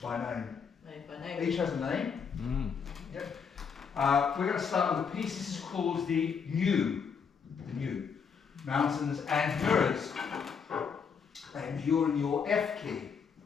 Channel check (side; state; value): right; quieter; 6.4 dB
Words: By name. Each has a name. Yep. We're going to start with a piece. This is called the New. Mountains and Mirrors. And you're in your F key.